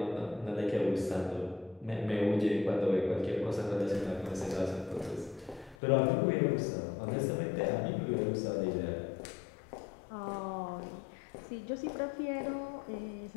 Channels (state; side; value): drops out; right; at 5.8 s